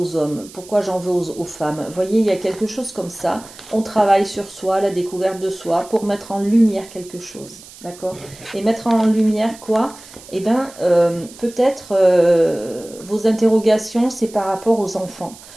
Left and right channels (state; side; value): noise; right; hiss, 19 dB below the sound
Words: hommes? Pourquoi j'en veux aux femmes? Vous voyez, il y a quelque chose comme ça. On travaille sur soi, la découverte de soi pour mettre en lumière quelque chose. D'accord? Et mettre en lumière quoi? Eh bien, peut-être vos interrogations, c'est par rapport aux enfants.